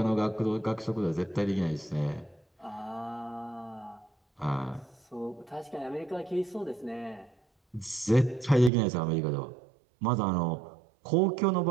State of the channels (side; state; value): left; drops out; at 8.7 s